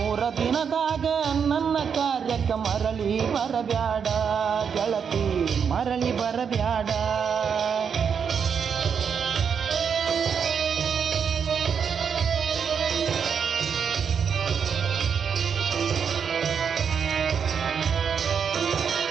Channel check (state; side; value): quieter; left; 6.9 dB